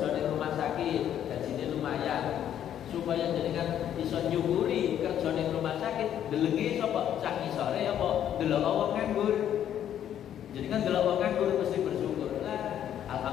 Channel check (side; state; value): right; quieter; 10.3 dB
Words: di rumah sakit, gajinya lumayan, supaya jenengan iso nyukuri kerja di rumah sakit, delengi sapa sak isore apa delok wong nganggur. Jadi kan delok wong nganggur mesti bersyukur. Lah,